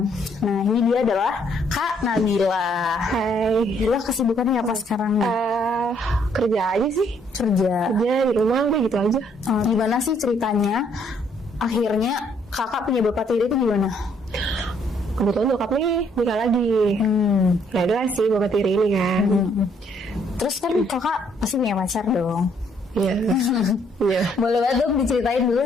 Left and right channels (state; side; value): normal; both; correlation 0.67